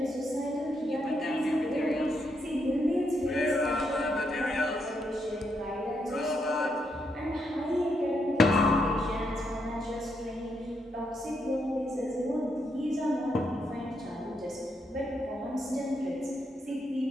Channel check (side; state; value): both; normal; correlation 0.79